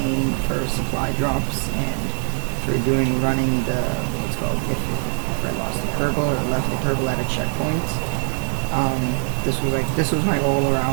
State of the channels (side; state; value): left; silent; 64 dB below the other